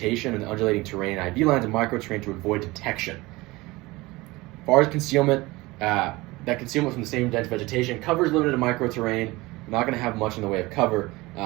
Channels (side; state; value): left; quieter; 21.5 dB